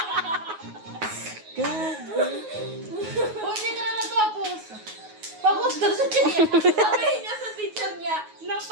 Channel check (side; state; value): left; late; 9.4 ms